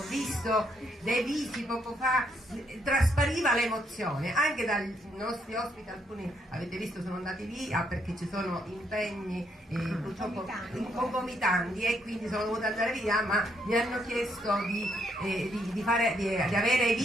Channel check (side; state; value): both; normal; correlation 0.74